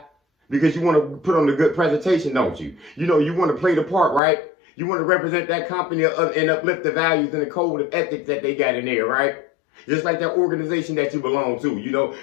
because you want to put on a good presentation, don't you? You want to play the part, right? You want to represent that company and uplift the values and the code of ethics that they got in there, right? Just like that organization that you belong to,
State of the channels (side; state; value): right; drops out; at 4.2 s